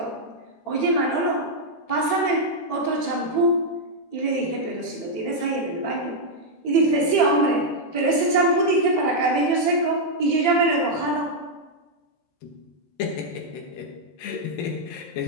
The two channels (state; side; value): late; right; 13 ms